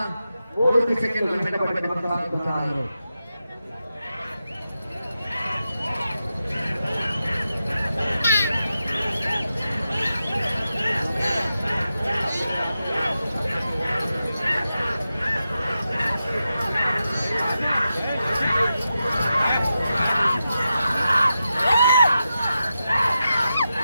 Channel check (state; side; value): inverted; both; correlation -0.89